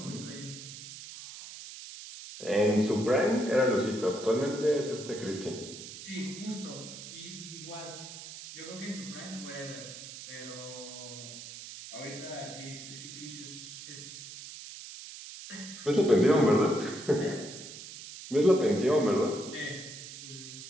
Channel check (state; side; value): noise; right; hiss, 12 dB below the sound